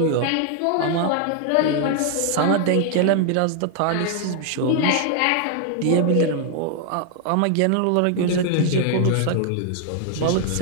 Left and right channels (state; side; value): different; both; correlation 0.00